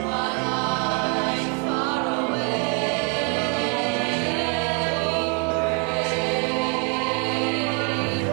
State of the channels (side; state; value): left; quieter; 36.4 dB